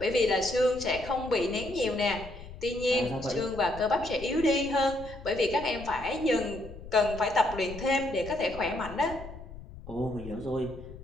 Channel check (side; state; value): left; noise; rumble, 14 dB below the sound